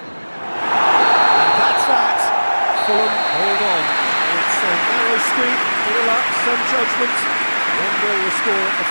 that's that. Fulham hold on. It's a narrow squeak, bit of luck, some judgment. 1-0 the score at the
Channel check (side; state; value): both; inverted; correlation -1.00